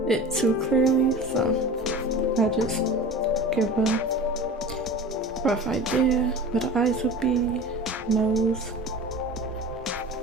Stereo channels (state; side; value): normal; both; correlation 0.36